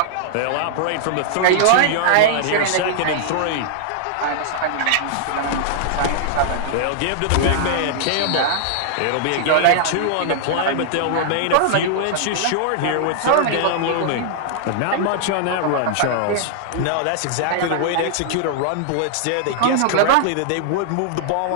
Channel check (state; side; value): different; both; correlation -0.01